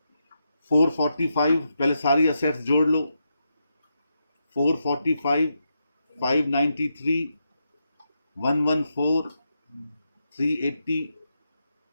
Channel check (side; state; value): both; inverted; correlation -0.84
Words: 445, पहले सारी असेट्स जोड़ लो। 445, 593, 114, 380,